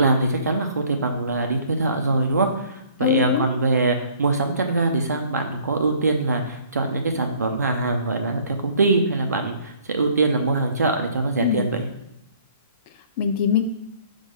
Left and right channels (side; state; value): both; inverted; correlation -0.57